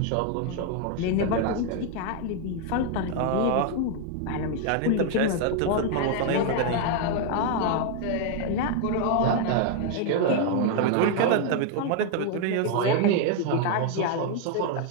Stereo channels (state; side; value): different; both; correlation 0.01